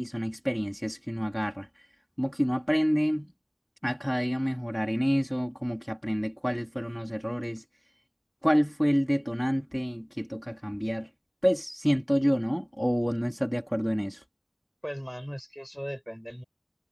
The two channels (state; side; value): identical; both; correlation 1.00